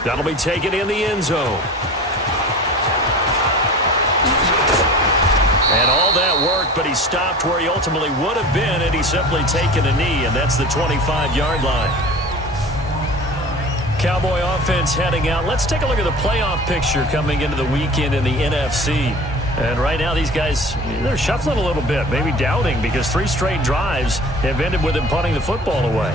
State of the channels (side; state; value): both; normal; correlation 0.39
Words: That'll be taken in the end zone. And all that worked, but he stopped where he ultimately would have been, and he's simply taken a knee, and that's the 25-yard line. Cowboy offense heading out. Let's take a look at the playoff picture coming into the weekend in the NFC. And right now, these guys, they're shuffling a little bit, maybe doubting, because 3 straight drives have ended with them punting the football away.